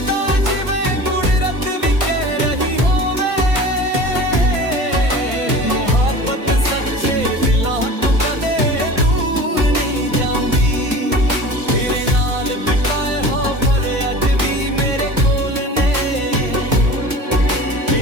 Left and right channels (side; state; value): left; late; 1.6 ms